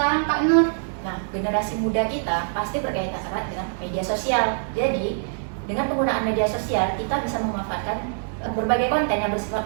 Kak Nur? Nah, generasi muda kita pasti berkaitan erat dengan media sosial. Jadi, dengan penggunaan media sosial, kita bisa memanfaatkan berbagai konten yang bersifat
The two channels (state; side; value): silent; left; digital silence